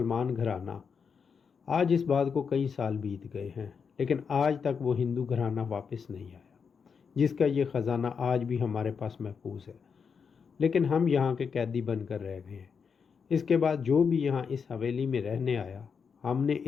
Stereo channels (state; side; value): quieter; right; 6.1 dB